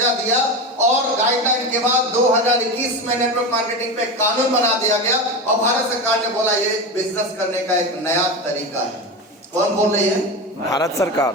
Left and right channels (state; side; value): normal; both; correlation 0.22